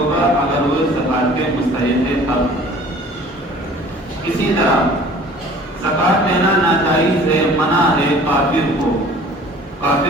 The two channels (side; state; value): both; normal; correlation 0.49